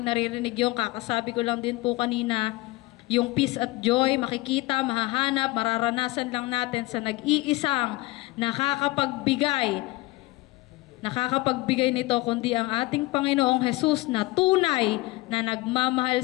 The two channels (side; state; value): right; quieter; 21.0 dB